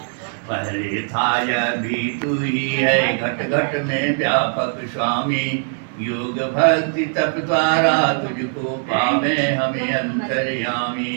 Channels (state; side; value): silent; left; digital silence